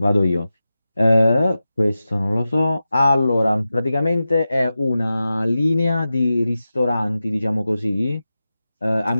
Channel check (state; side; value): inverted; both; correlation -0.93